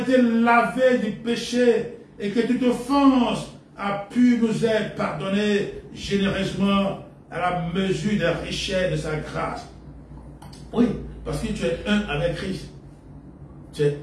lavés du péché et que toute offense a pu nous être pardonnée généreusement à la mesure des richesses de sa grâce. Oui, parce que tu es un avec Christ. Tu es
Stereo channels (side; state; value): both; identical; correlation 1.00